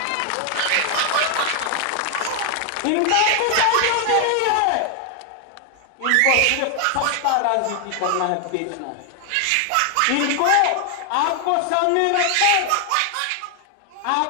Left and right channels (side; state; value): both; different; correlation 0.00